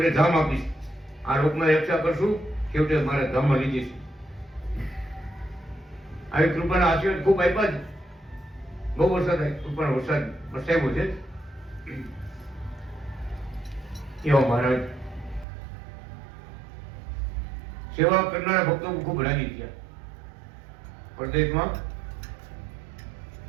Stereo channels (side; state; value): left; drops out; at 15.5 s